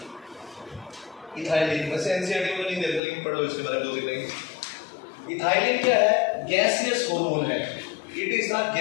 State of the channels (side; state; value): right; drops out; at 3.0 s